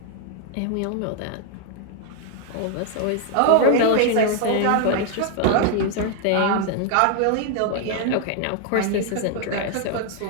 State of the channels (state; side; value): different; both; correlation 0.00